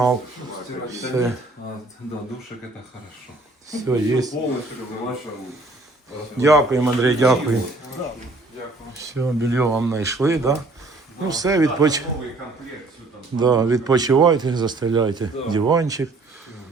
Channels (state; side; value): quieter; left; 3.1 dB